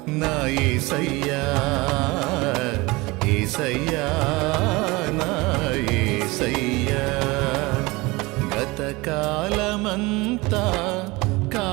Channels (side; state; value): left; quieter; 23.1 dB